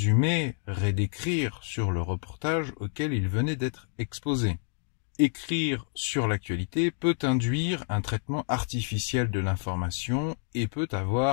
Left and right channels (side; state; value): right; silent; 58 dB below the other